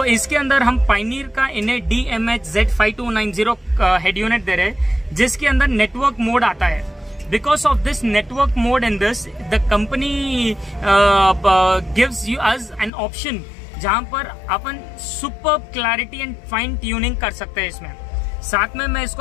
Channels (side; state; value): right; drops out; at 12.9 s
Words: इसके अंदर हम पायनियर का इन्हें DMH-Z5290 हेड यूनिट दे रहे हैं, जिसके अंदर नेटवर्क मोड आता है। Because of this network mode in this, the company gives you us an option जहां पर अपन super clarity and fine tuning कर सकते हैं इसमें। साथ में मैं